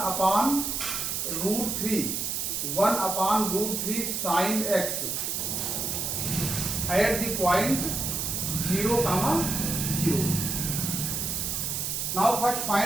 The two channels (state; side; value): noise; right; hiss, 1 dB below the sound